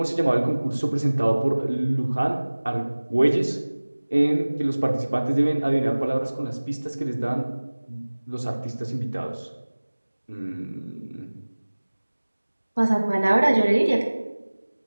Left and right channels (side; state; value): both; inverted; correlation -1.00